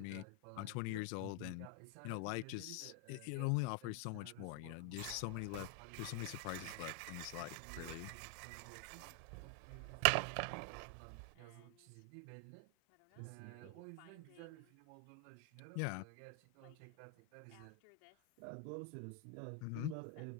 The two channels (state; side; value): different; both; correlation 0.00